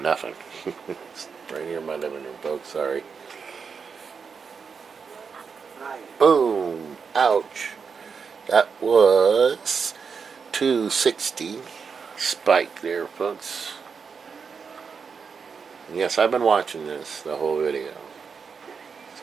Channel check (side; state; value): left; quieter; 5.8 dB